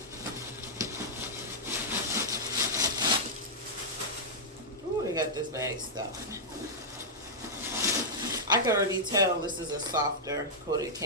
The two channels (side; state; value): both; normal; correlation -0.09